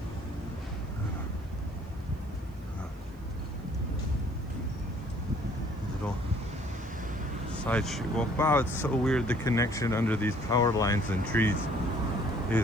Little side street. Well, wow, it's so weird. The connection under these power lines and trees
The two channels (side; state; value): right; noise; hiss, 30 dB below the sound